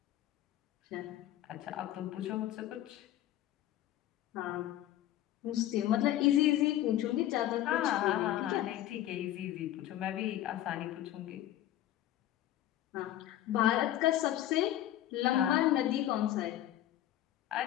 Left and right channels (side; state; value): right; quieter; 13.2 dB